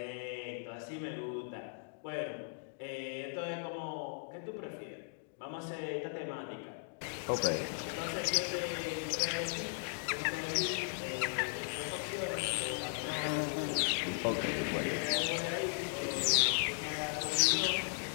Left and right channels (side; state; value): right; silent; digital silence